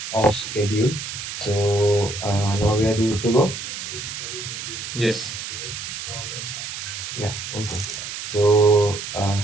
off schedule. So now we are good to go. Yes. Now we can start. Yeah. Okay. So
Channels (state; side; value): noise; right; hiss, 7 dB below the sound